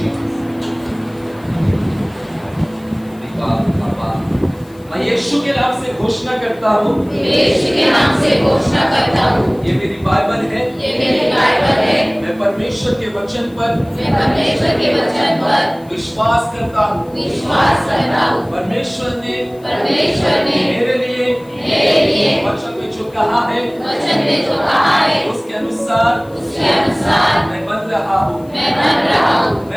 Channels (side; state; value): left; noise; hiss, 28 dB below the sound